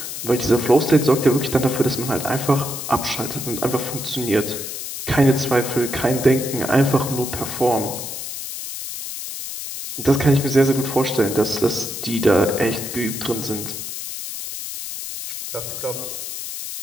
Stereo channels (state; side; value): noise; left; hiss, 7 dB below the sound